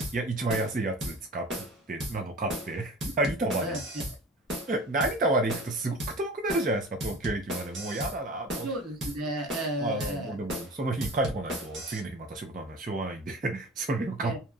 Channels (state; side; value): normal; both; correlation 0.38